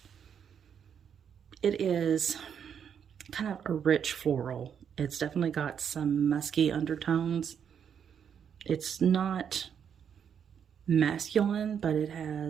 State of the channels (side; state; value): left; quieter; 7.9 dB